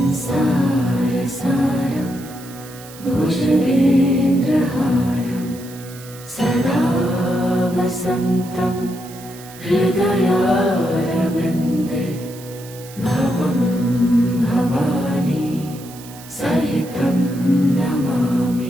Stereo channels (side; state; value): right; noise; hiss, 18 dB below the sound